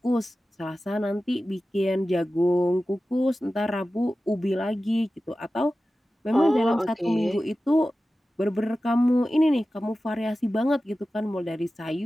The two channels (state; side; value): normal; both; correlation 0.95